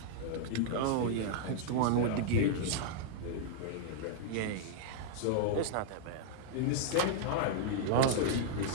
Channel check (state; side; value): different; both; correlation -0.01